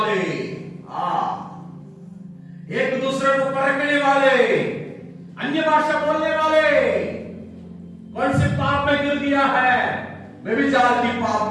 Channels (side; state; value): both; identical; correlation 1.00